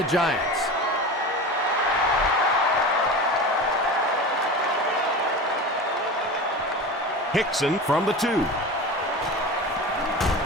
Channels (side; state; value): both; normal; correlation 0.30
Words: Giants. Hickson from the 2.